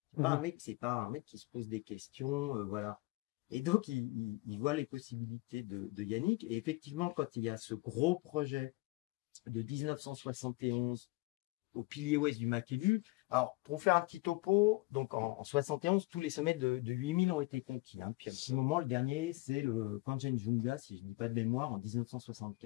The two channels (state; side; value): quieter; right; 22.3 dB